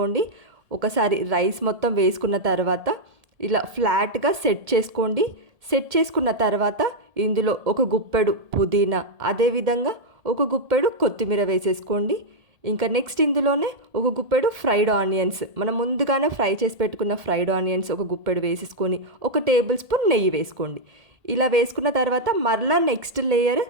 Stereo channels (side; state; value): left; late; 1.8 ms